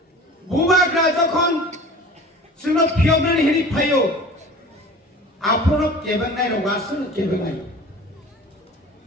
बुबाग्रा जखन जोंनो फियबनानै हेरि फायो आपनो केबेंनाय रगासनो केबेंनाय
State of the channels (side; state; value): both; normal; correlation 0.41